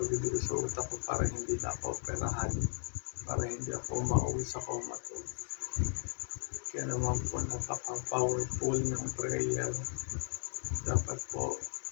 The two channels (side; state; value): right; silent; 54 dB below the other